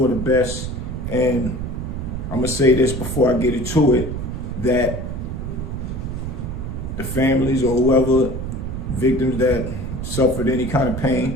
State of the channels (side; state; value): right; noise; rumble, 5 dB below the sound